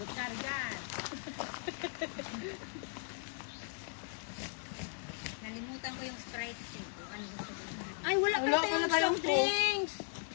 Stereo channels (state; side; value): silent; right; 53 dB below the other